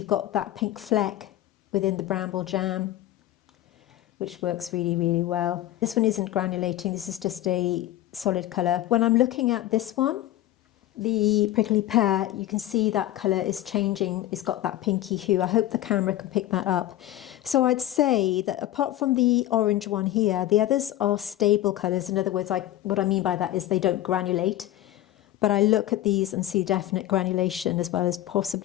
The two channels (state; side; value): quieter; right; 13.9 dB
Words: got that pink fleck within the bramble jam, which works really, really well. This one isn't granulating, this is just a solid colour. When I'm looking at this one, the prickly pear, you can see that colour is changing. It's got that pinky hue. I hope the camera can pick that up. So I'd say that apart from the orange one here, the others are stable colours. In other words, what I mean by that is they don't granulate. But I look at these and see definite granulation as well as